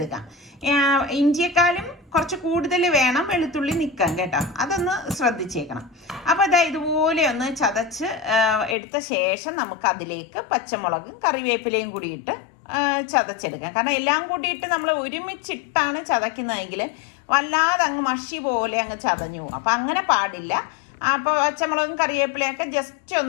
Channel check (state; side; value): drops out; right; at 8.8 s